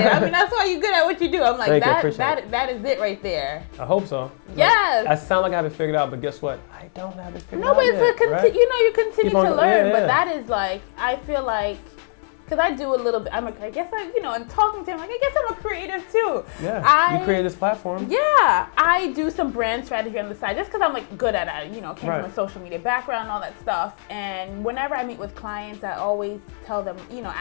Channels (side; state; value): right; silent; 61 dB below the other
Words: I mean, that's why you're good at what you do. I'm like, that is it right there. I hope so. Yes. I sound like I have it figured out, but guess what? I don't have it figured out. No, but it's you continue to learn. But that is like, I feel like, because I do a little bit, I guess and talking to him, like, I guess I'm a creative too. Yeah, you created this platform. Yeah, I do some brand strategy on the side just because I'm like good at it. Came from a social media background and all that stuff. And whenever I meet with clients, I always tell them,